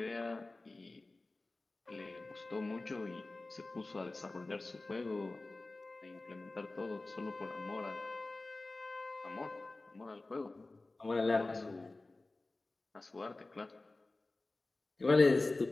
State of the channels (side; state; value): right; quieter; 3.1 dB